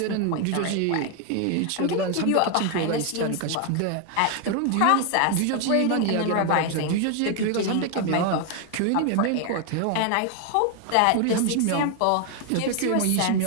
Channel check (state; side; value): different; both; correlation 0.00